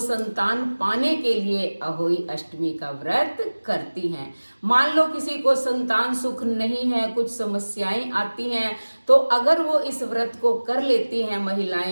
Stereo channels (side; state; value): both; inverted; correlation -1.00